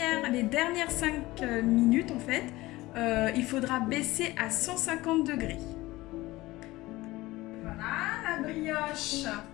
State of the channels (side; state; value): right; quieter; 19.0 dB